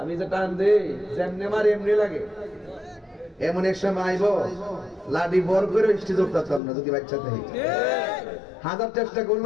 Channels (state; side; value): drops out; right; at 6.6 s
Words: যে টান দেই যেমনে মার এমনি লাগে। এমন এক সময় আইব লাডি বর করে স্টেজ উঠতাম না যদি বাচ্চা থেকে, হাজার চেষ্টা